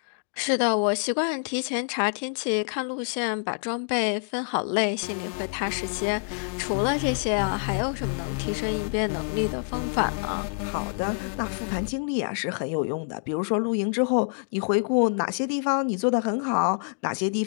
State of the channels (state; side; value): silent; right; digital silence